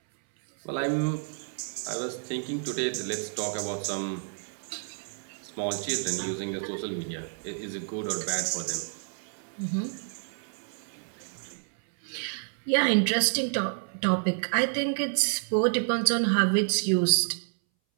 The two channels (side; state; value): left; silent; 58 dB below the other